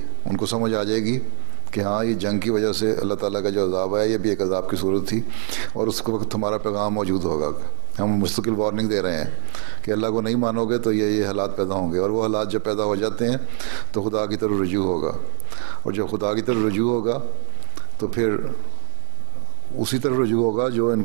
ان کو سمجھ آ جائے گی کہ ہاں یہ جنگ کی وجہ سے اللہ تعالیٰ کا جو عذاب ہے یہ بھی ایک عذاب کی صورت تھی، اور اس وقت ہمارا پیغام موجود ہوگا. ہم مستقل وارننگ دے رہے ہیں کہ اللہ کو نہیں مانو گے تو یہ حالات پیدا ہوں گے، اور وہ حالات جب پیدا ہو جاتے ہیں تو خدا کی طرف رجوع ہوگا. اور جب خدا کی طرف رجوع ہوگا تو پھر اسی طرف رجوع ہوگا جو ان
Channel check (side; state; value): left; silent; 64 dB below the other